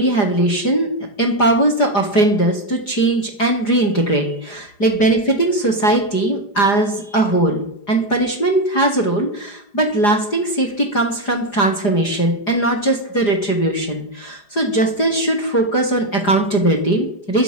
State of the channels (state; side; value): late; right; 4.9 ms